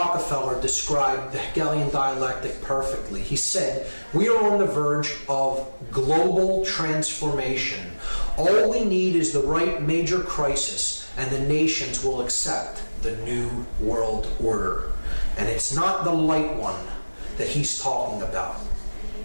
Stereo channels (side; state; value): both; inverted; correlation -1.00